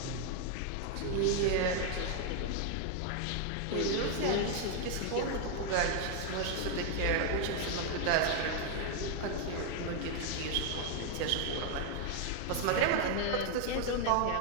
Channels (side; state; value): both; different; correlation 0.00